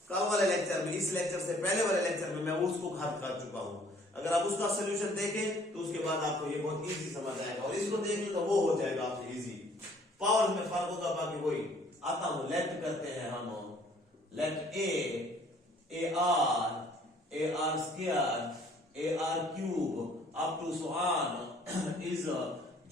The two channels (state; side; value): normal; both; correlation 0.58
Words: कल वाले लेक्चर में, इस लेक्चर से पहले वाले लेक्चर में मैं उसको खत्म कर चुका हूं। अगर आप उसका सोल्यूशन देखें तो उसके बाद आपको ये बहुत इजी समझ आएगा, और इसको देखें तो वो हो जाएगा आपसे इजी। पावर में फर्क होगा, बाकी वही। आता हूं, लेफ्ट करते हैं हम, left A R square AR cube up to so on is